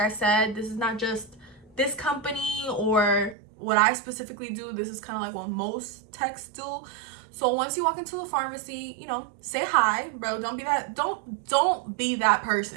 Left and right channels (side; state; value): left; drops out; at 3.4 s